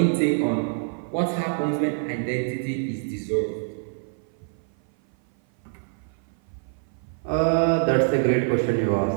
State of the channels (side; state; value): left; silent; 56 dB below the other